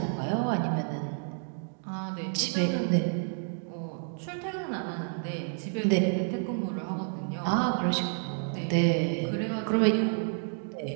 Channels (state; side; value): silent; left; 58 dB below the other